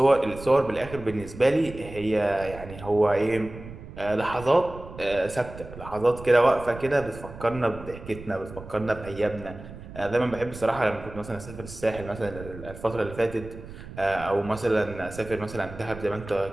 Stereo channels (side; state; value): right; noise; rumble, 14 dB below the sound